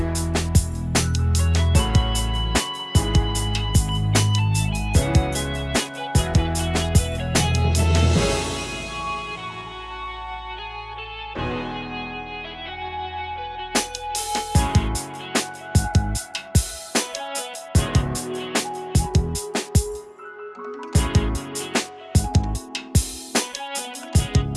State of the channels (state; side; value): identical; both; correlation 1.00